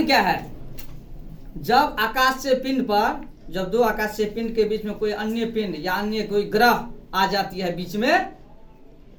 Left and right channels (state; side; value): identical; both; correlation 1.00